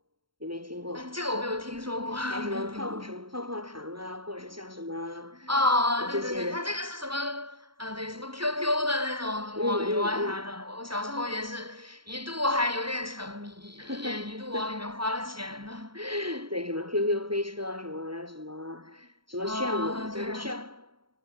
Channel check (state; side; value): late; left; 0.73 ms